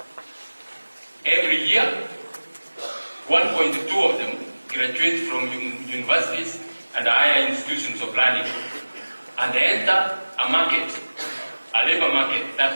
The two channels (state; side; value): inverted; both; correlation -1.00